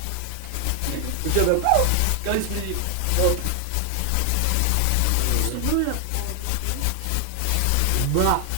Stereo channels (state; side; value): different; both; correlation 0.00